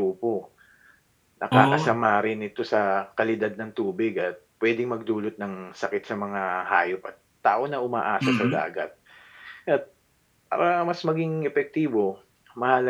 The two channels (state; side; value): identical; both; correlation 1.00